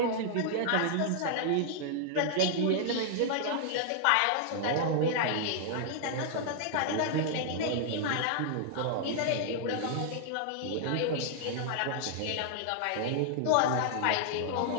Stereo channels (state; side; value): different; both; correlation -0.01